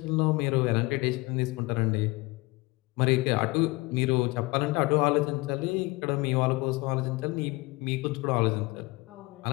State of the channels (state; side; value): quieter; right; 23.6 dB